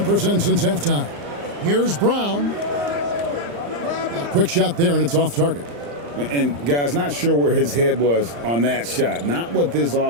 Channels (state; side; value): late; left; 35 ms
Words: since halftime. Here's Brown. A quick shot there, and it's off target. And guys, not sure where his head was on that shot. Not what this